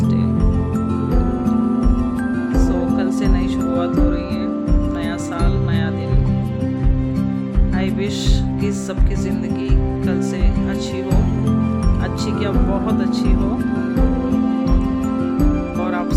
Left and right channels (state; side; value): identical; both; correlation 1.00